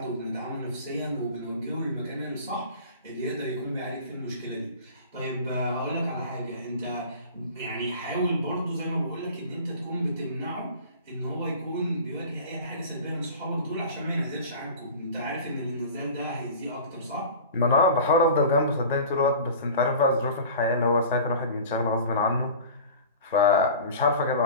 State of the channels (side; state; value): both; inverted; correlation -0.39